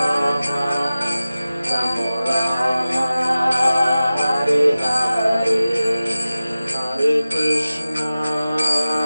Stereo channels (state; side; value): inverted; both; correlation -0.96